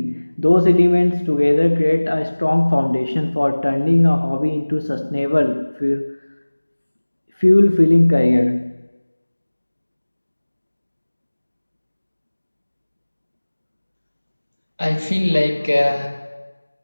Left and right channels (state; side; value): inverted; both; correlation -1.00